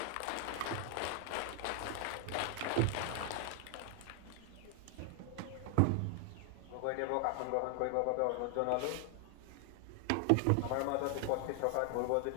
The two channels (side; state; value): both; different; correlation 0.00